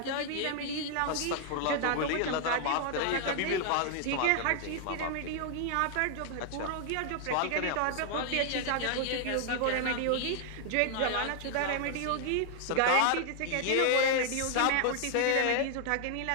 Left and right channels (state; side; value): different; both; correlation 0.00